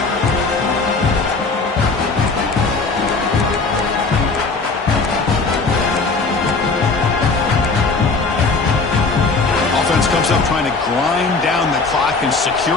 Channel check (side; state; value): right; quieter; 4.0 dB